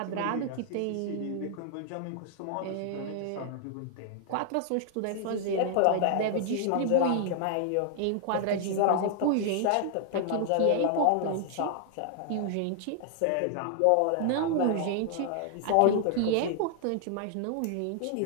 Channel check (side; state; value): both; different; correlation -0.01